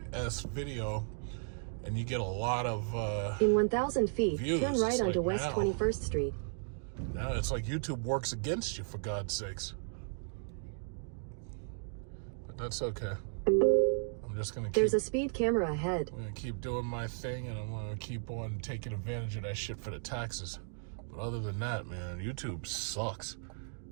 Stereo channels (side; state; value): left; silent; digital silence